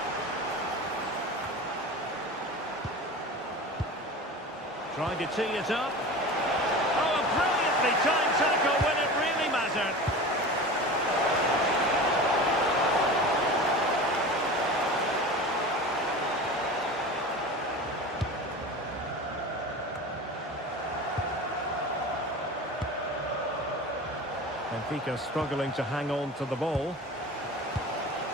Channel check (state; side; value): normal; both; correlation 0.33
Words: Trying to tee it up. Oh, a brilliantly timed tackle when it really mattered. Benfica struggling to hang on to the ball.